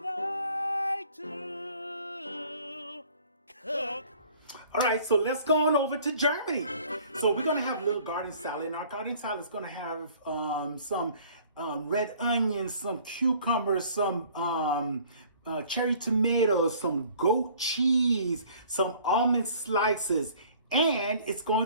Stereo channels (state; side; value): inverted; both; correlation -0.53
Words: to cook. All right, so let's go on over to Germany. So we're gonna have a little garden salad, and our garden salad is gonna have some red onions, some cucumbers, some cherry tomatoes, some goat cheese, some almond slices, and it's going